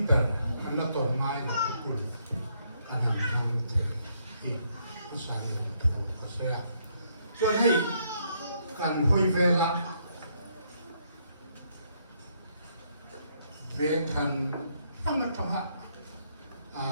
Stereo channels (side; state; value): both; inverted; correlation -0.73